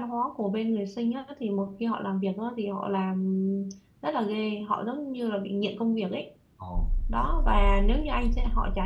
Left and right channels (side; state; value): both; identical; correlation 1.00